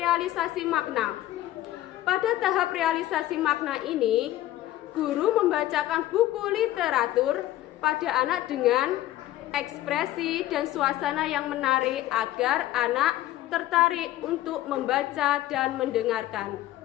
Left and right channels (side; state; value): right; quieter; 14.6 dB